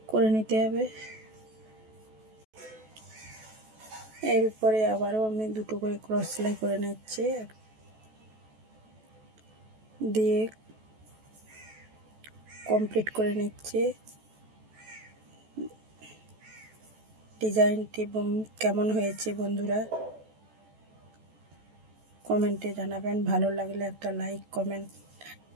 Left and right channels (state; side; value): late; left; 14 ms